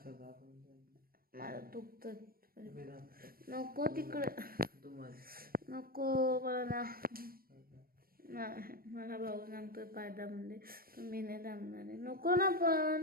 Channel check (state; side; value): late; left; 0.43 ms